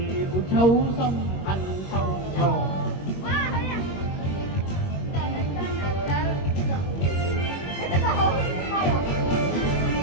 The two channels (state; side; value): late; right; 21 ms